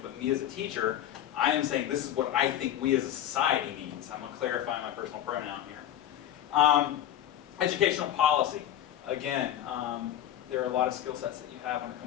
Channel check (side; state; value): right; quieter; 11.5 dB